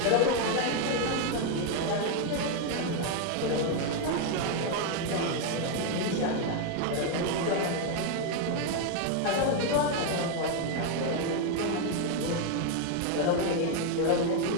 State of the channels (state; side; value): different; both; correlation 0.01